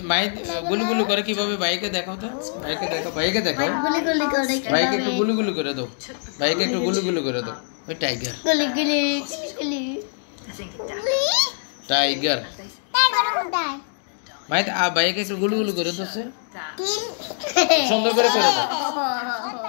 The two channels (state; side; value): silent; right; digital silence